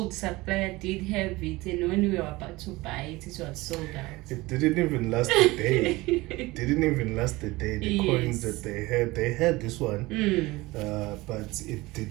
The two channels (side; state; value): left; quieter; 20.9 dB